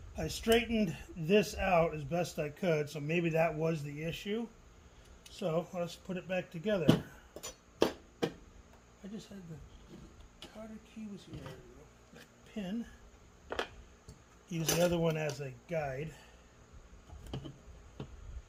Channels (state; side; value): identical; both; correlation 1.00